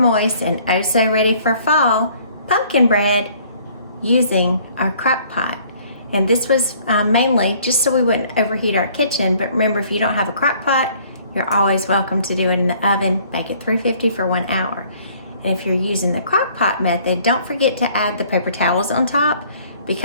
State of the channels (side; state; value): both; inverted; correlation -0.58